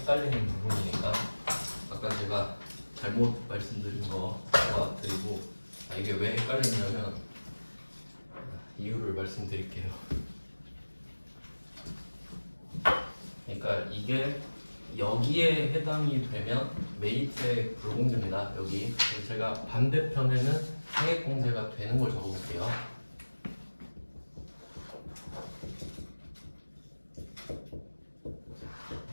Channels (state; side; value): inverted; both; correlation -1.00